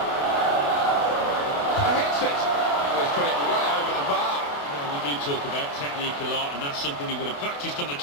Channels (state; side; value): late; right; 28 ms